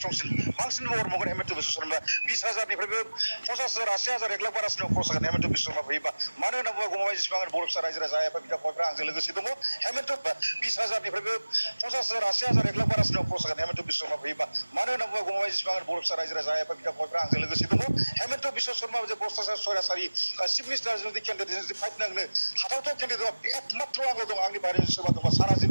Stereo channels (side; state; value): both; inverted; correlation -1.00